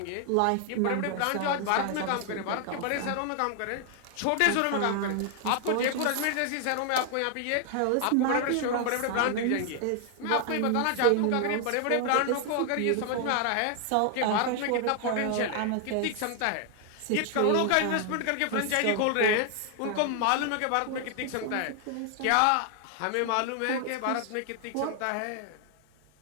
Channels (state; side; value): different; both; correlation 0.00